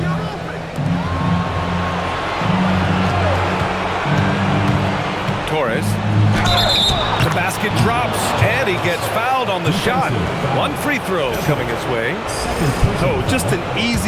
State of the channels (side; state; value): both; identical; correlation 1.00